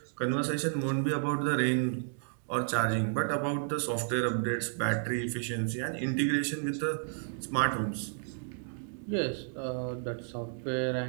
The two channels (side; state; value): left; silent; digital silence